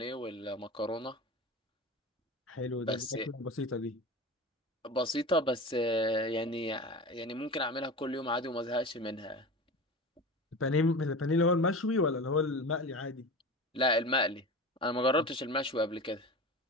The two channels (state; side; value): normal; both; correlation 0.30